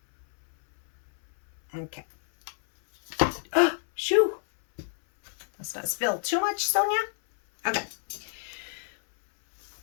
Okay. Oh, shoo! Let's not spill too much, Sonia. Okay.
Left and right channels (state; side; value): silent; right; 59 dB below the other